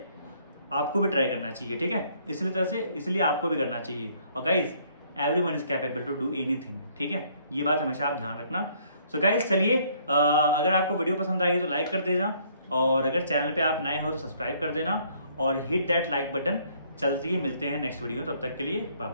आपको भी ट्राई करना चाहिए। ठीक है, इसलिए आपको भी करना चाहिए। और guys everyone is capable to do anything. ठीक है, ये बात हमेशा आप ध्यान रखना। सो गाइज चलिए, अगर आपको वीडियो पसंद आई है तो लाइक कर देना, और अगर चैनल पे आप नए हो तो सब्सक्राइब कर देना और हिट दैट लाइक बटन। चलती है, मिलते हैं नेक्स्ट वीडियो, तब तक के लिए बाय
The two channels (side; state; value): both; inverted; correlation -0.64